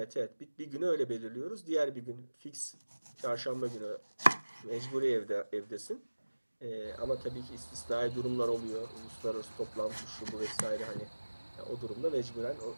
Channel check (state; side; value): inverted; both; correlation -1.00